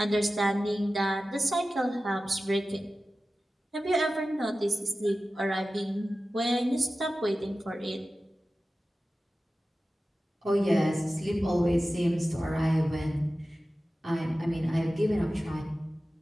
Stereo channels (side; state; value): both; normal; correlation 0.95